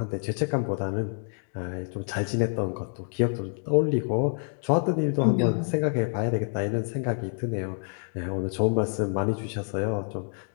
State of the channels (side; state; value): right; silent; 60 dB below the other